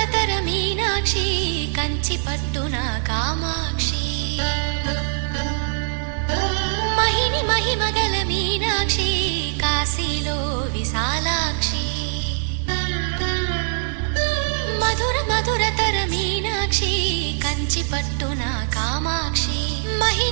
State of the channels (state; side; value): silent; left; digital silence